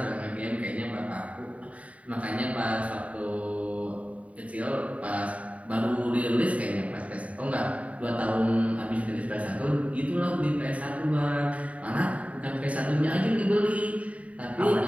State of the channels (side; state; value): left; late; 0.067 ms